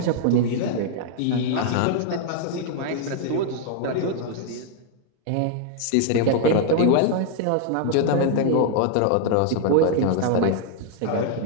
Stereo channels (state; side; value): different; both; correlation 0.00